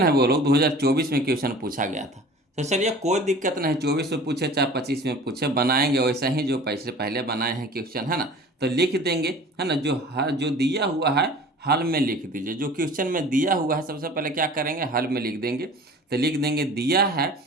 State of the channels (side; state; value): both; normal; correlation 0.43